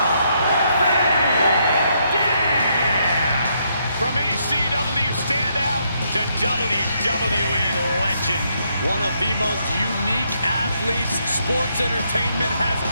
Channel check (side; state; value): both; inverted; correlation -0.75